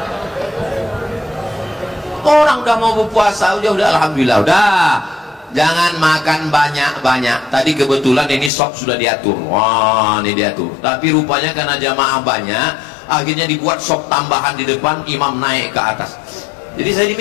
Orang udah mau berpuasa udah alhamdulillah, udah jangan makan banyak-banyak. Tadi kebetulan ini sop sudah diatur. Wah, ini diatur. Tapi rupanya karena jamaah banyak, akhirnya dibuat sop tambahan di depan, imam naik ke atas. Jadi saya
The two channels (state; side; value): drops out; right; at 8.5 s